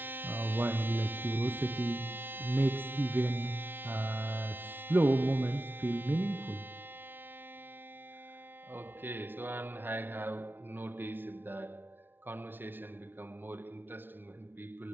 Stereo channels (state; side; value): late; left; 0.10 ms